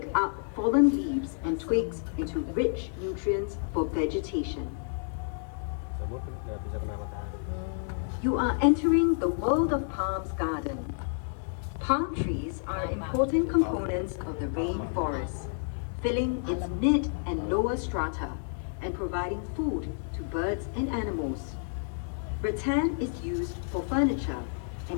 up fallen leaves and twigs into rich nutrients for vegetation. You are entering the World of Palms garden. Palm trees are important components of the rainforest, filling its mid and lower strata and providing food to birds and animals. Rattan is used for furniture,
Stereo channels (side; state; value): right; silent; digital silence